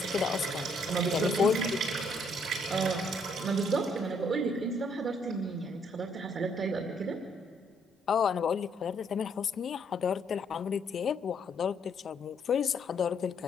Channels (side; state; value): both; normal; correlation 0.69